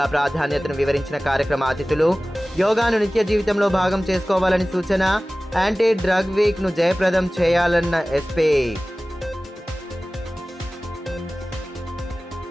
ప్రాధాన్యతను వివరించిన కార్యక్రమ అతిథులు, యోగాను నిత్య జీవితంలో భాగం చేసుకోవాలని సూచన, యాంటీ డ్రగ్ వీక్ ను జయప్రదం చేయాలన్న ఎస్పీ.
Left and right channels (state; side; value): normal; both; correlation 0.97